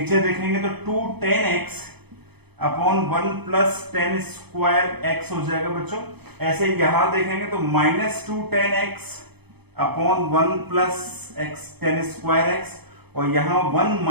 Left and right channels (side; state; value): left; late; 0.98 ms